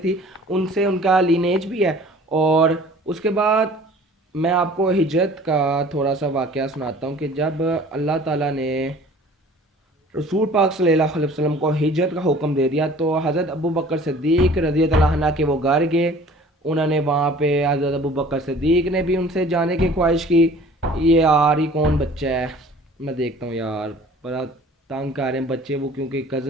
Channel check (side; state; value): both; normal; correlation 0.48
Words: ان سے ان کا لینیج بھی ہے. اور اس کے بعد میں آپ کو ہجرت کا تھوڑا سا واقعہ سناتا ہوں کہ جب اللہ تعالیٰ نے رسول پاک صلی اللہ علیہ وسلم کو ہجرت کا حکم دے دیا تو حضرت ابوبکر صدیق رضی اللہ عنہ کے وہ گھر گئے. انہوں نے وہاں پہ حضرت ابوبکر صدیق نے بھی ان سے جانے کی خواہش کی. یہ یار یہ کون بچہ ہے، میں دیکھتا ہوں یار بڑا تنگ کر رہے ہیں بچے وہ، کیونکہ